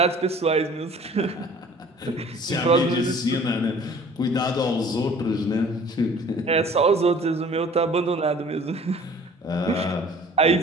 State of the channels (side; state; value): both; normal; correlation 0.50